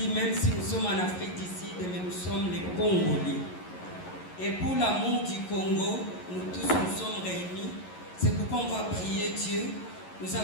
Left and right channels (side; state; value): right; late; 11 ms